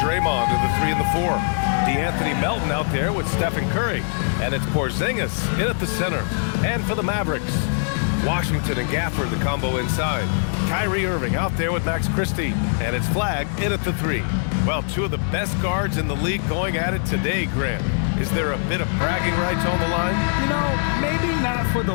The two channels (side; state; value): right; silent; digital silence